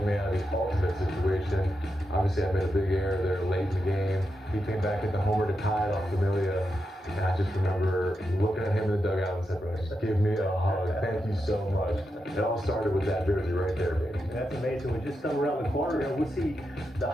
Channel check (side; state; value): both; normal; correlation 0.87